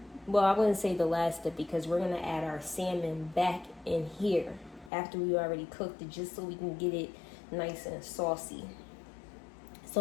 well, I wouldn't say the last step, because we're going to add our salmon back in here. after we already cooked it, just so we can get it nice and saucy. So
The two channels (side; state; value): right; drops out; at 4.9 s